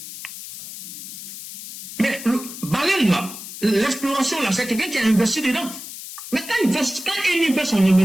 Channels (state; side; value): noise; left; hiss, 12 dB below the sound